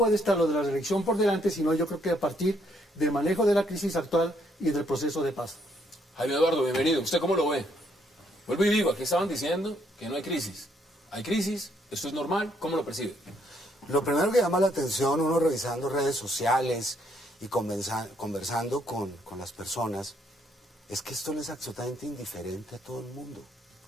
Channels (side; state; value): both; normal; correlation 0.71